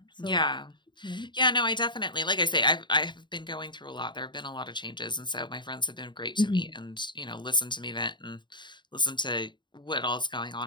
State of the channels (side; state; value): right; late; 0.22 ms